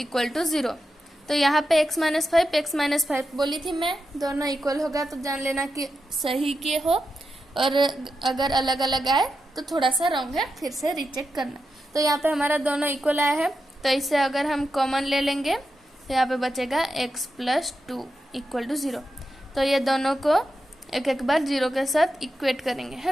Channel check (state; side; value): normal; both; correlation 0.88